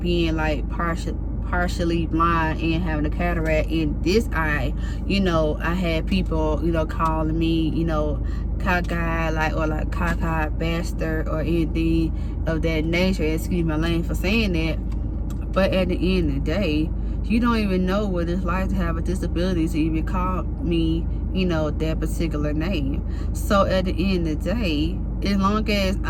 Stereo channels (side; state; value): both; identical; correlation 1.00